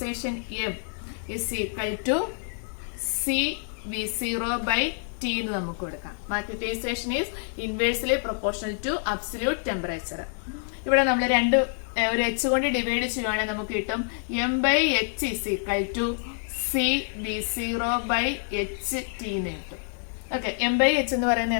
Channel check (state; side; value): silent; right; 60 dB below the other